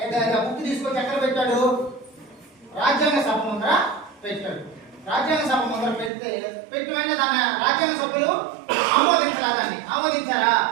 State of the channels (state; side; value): drops out; left; at 6.1 s